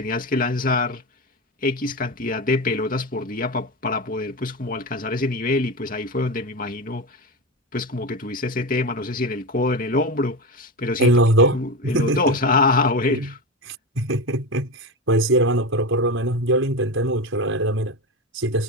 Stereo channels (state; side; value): normal; both; correlation 0.20